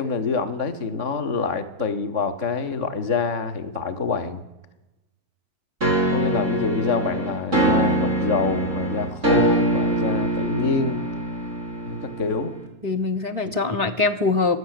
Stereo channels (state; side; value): late; left; 3.6 ms